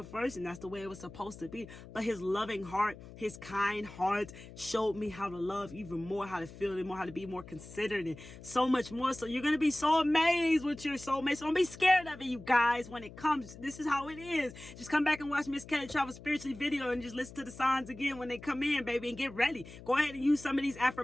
first and that's the way it was supposed to be. But his loving heart, his kind heart showed me how to love even more, how to feel it more, how to be more considerate and so much more. So you're going to be so amazed with your soulmate. So don't be scared of it, you guys, when it comes. This is how it is. Just come back and watch Miss Kelly Travel Spiritually video and just listen to the signs again when they come in, baby, and get ready. Go ahead and use some of these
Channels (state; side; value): noise; left; hum, 16 dB below the sound